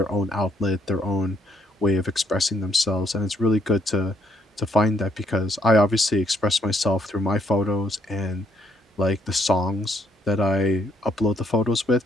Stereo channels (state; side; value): normal; both; correlation 0.71